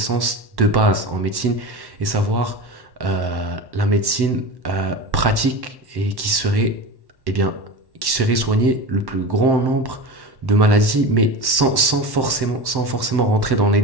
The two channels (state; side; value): late; left; 1.1 ms